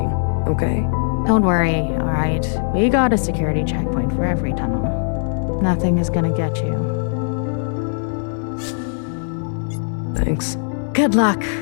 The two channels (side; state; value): right; silent; digital silence